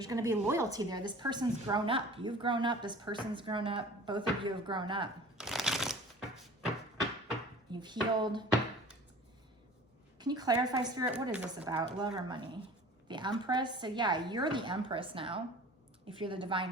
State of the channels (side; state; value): both; normal; correlation 0.43